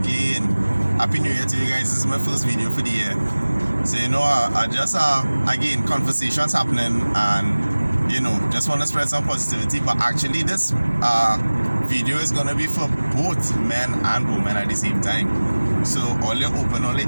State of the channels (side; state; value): both; inverted; correlation -1.00